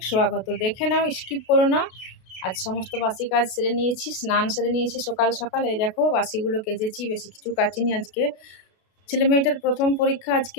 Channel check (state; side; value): late; right; 32 ms